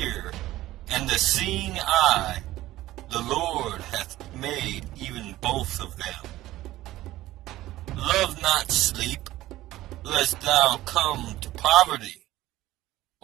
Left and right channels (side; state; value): left; quieter; 15.9 dB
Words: and the seeing eye, the Lord hath made even both of them. Love not sleep, lest thou come to poverty.